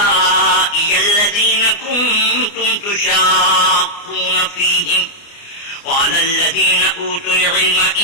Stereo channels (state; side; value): late; right; 29 ms